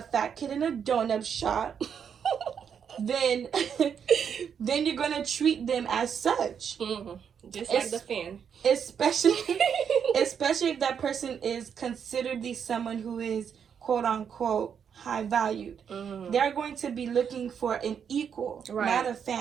fat kid in a donut shop, then you're gonna treat them as such. Just like the fan. Especially if that person is consideredly someone who is quote unquote high valued. They're going to be looking for an equal, not a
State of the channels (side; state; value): left; quieter; 7.5 dB